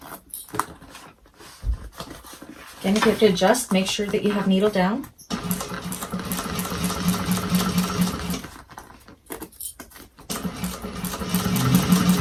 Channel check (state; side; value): identical; both; correlation 1.00